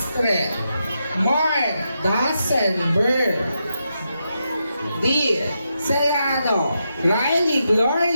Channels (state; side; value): inverted; both; correlation -0.84